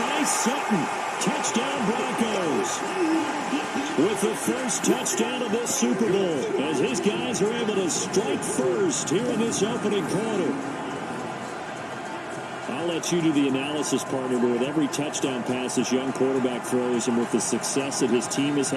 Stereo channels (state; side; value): identical; both; correlation 1.00